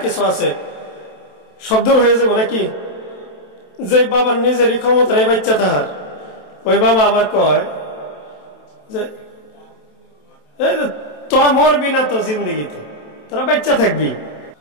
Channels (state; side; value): late; right; 27 ms